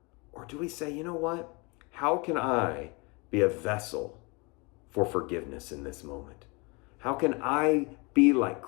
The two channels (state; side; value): quieter; right; 28.8 dB